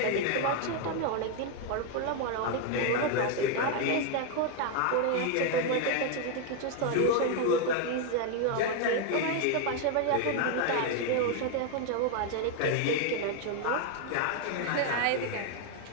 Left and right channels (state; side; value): different; both; correlation 0.00